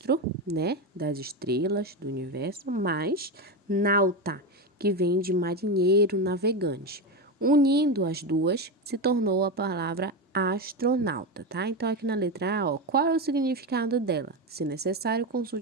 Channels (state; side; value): normal; both; correlation 0.15